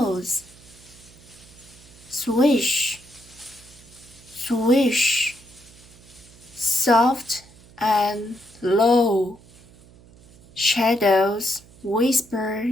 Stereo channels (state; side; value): noise; right; hum, 24 dB below the sound